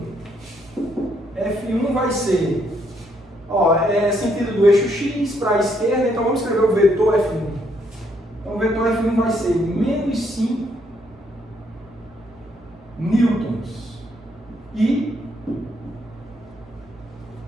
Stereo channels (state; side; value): normal; both; correlation 0.72